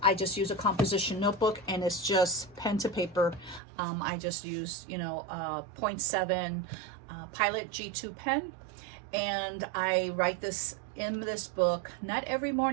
I just use a composition notebook, and it's just pen to paper. I just use, you know, 0.7 Pilot G2 pen, And I write this in this book, not every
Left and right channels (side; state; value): left; drops out; at 3.6 s